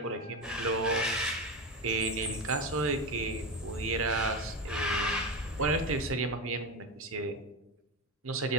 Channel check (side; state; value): both; normal; correlation 0.18